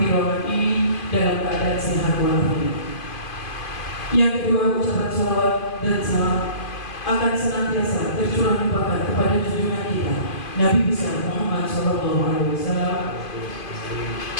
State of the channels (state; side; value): late; right; 2.5 ms